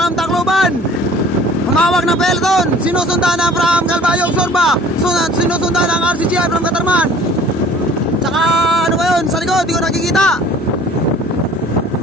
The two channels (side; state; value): both; normal; correlation 0.50